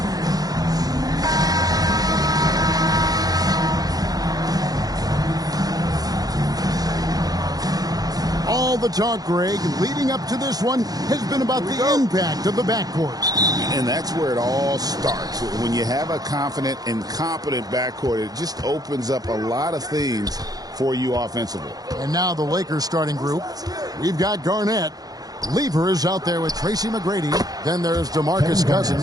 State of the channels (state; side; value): late; left; 0.18 ms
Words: All the talk, Greg, leading up to this one has been about the impact of the backcourt. And that's where it all starts. When you have a confident and competent backcourt, it just opens up a lot of things for you offensively. And now the Lakers starting group. We've got Garnett. Lever is out there with Tracy McGrady. Then there's DeMarcus